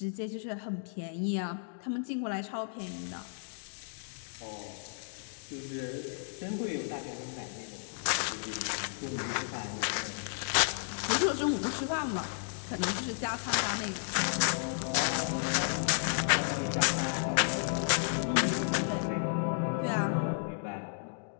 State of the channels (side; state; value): right; silent; digital silence